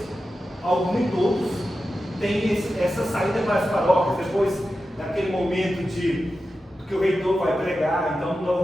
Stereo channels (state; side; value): normal; both; correlation 0.92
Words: alguns nem todos, têm essa saída para as paróquias, depois daquele momento que o reitor vai pregar. Então